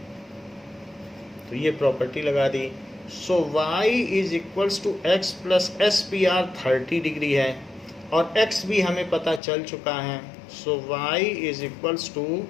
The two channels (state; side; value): drops out; right; at 9.4 s